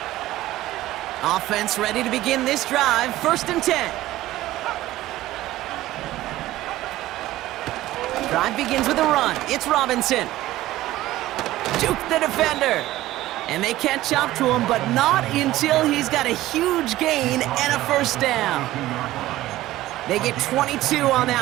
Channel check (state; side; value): quieter; left; 15.8 dB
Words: Offense ready to begin this drive. 1st and 10. Drive begins with a run. It's Robinson. Juke the defender. And they catch up to him, but not until he's got a huge gain and a 1st down. They get 22 on